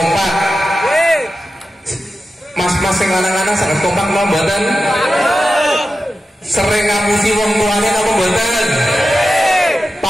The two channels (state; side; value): normal; both; correlation 0.92